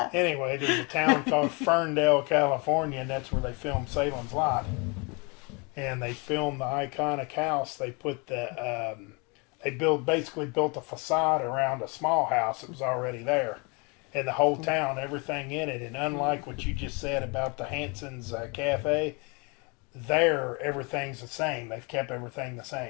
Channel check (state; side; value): quieter; right; 30.9 dB